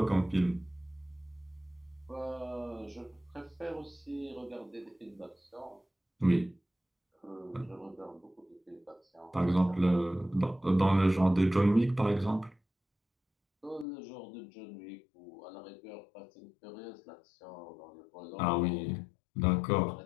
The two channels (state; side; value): drops out; right; at 13.9 s